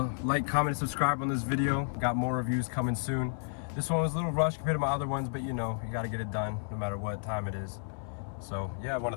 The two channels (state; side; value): silent; right; 57 dB below the other